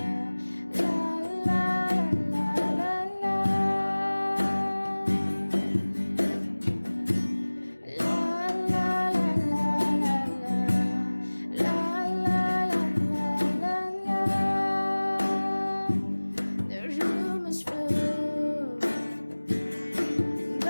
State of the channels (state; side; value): inverted; both; correlation -1.00